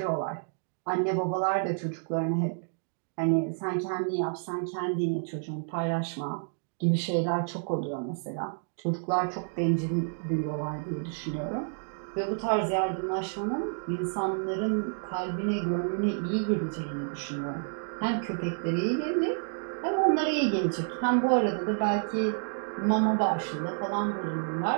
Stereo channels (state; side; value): silent; left; digital silence